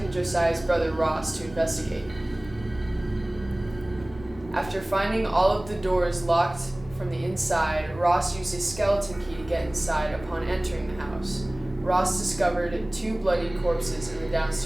Josiah's brother Ross to investigate. After finding all of the doors locked from the inside, Ross used a skeleton key to get inside upon entering the house. Ross discovered 2 bloodied corpses in the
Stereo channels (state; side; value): noise; right; rumble, 18 dB below the sound